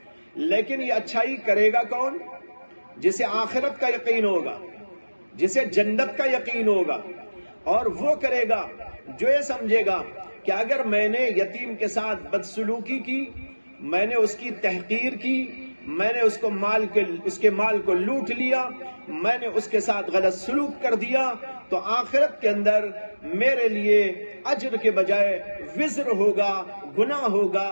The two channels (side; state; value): both; inverted; correlation -1.00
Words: لیکن یہ اچھائی کرے گا کون؟ جسے آخرت کا یقین ہوگا، جسے جنت کا یقین ہوگا، اور وہ کرے گا جو یہ سمجھے گا کہ اگر میں نے یتیم کے ساتھ بدسلوکی کی، میں نے اس کی تحقیر کی، میں نے اس کے مال کو لوٹ لیا، میں نے اس کے ساتھ غلط سلوک کر دیا، تو آخرت کے اندر میرے لیے اجر کے بجائے وزر ہوگا، گناہ ہوگا،